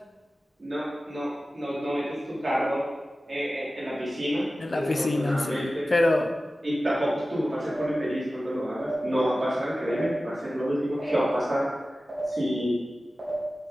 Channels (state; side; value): normal; both; correlation 0.95